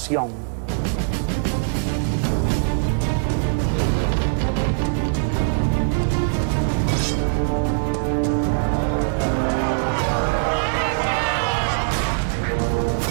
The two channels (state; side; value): silent; left; digital silence